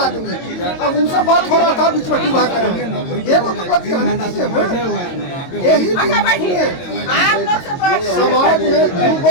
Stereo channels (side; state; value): right; late; 22 ms